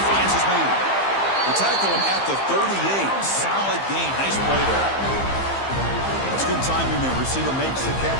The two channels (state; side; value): late; right; 15 ms